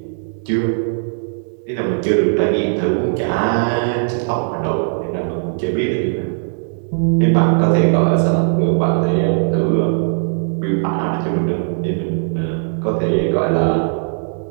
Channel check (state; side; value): silent; left; digital silence